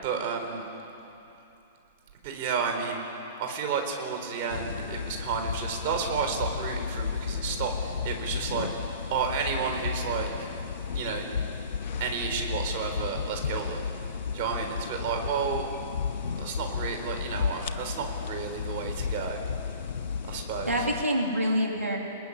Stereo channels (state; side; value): inverted; both; correlation -0.42